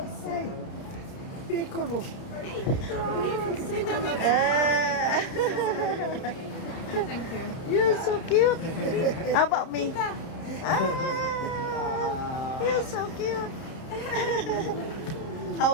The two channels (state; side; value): late; right; 31 ms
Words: Thank you. You're so cute. How about me? Ah, you're so cute. How